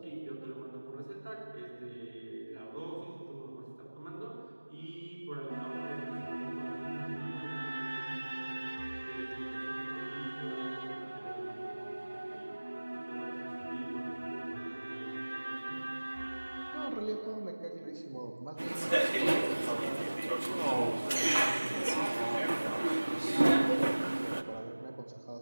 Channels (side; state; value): both; inverted; correlation -1.00